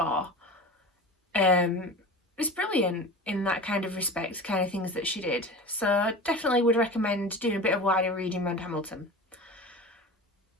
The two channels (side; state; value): both; normal; correlation 0.33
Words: It's brilliant in that kind of respect, kind of things that she did. So definitely would recommend doing a bit of wider reading around Hamilton.